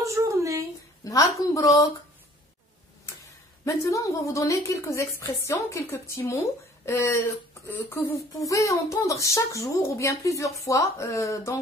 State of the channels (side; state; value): both; normal; correlation 0.53